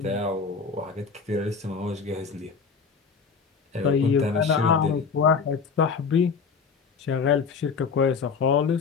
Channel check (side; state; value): right; quieter; 5.5 dB